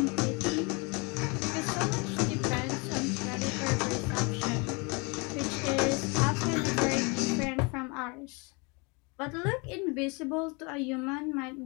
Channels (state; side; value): quieter; right; 30.2 dB